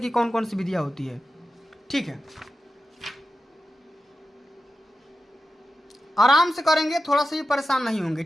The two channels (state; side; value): normal; both; correlation 0.92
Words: की कौन कौन सी विधियाँ होती है, ठीक है। आराम से करेंगे, थोड़ा सा भी परेशान नहीं होंगे,